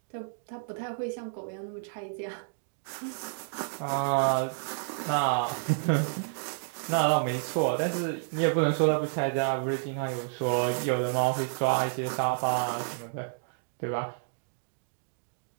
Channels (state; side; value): silent; left; digital silence